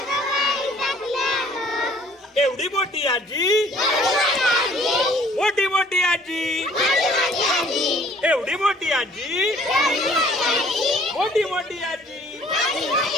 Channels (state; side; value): normal; both; correlation 0.56